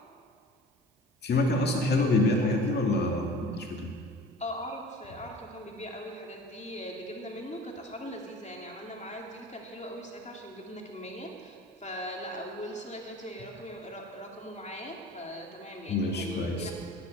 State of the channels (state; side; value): normal; both; correlation 0.43